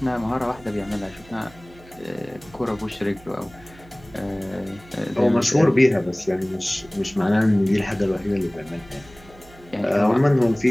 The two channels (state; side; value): noise; right; hum, 23 dB below the sound